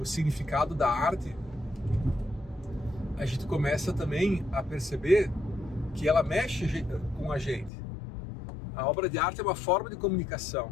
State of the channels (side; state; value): right; drops out; at 7.7 s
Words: significado da arte, a gente começa também a perceber que ela mexe com a gente. A obra de arte é uma forma de comunicação.